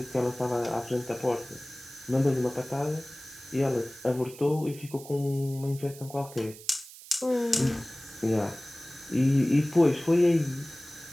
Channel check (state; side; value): noise; right; hiss, 17 dB below the sound